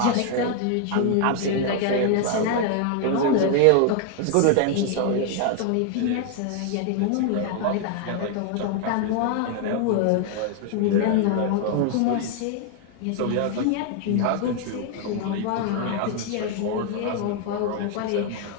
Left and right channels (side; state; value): both; different; correlation 0.00